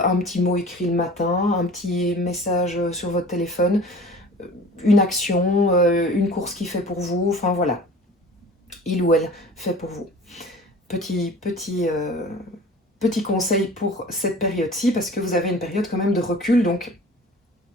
un petit mot écrit le matin, un petit message sur votre téléphone, une action, une course qu'il fait pour vous, enfin voilà, il ou elle fait pour vous. Petit conseil pour cette période-ci, parce que vous avez une période quand même de recul, donc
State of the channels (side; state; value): both; normal; correlation 0.43